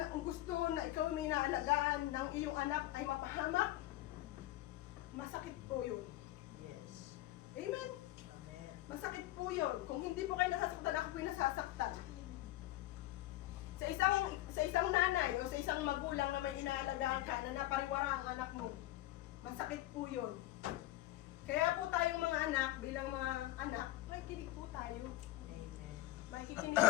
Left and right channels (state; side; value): quieter; right; 16.2 dB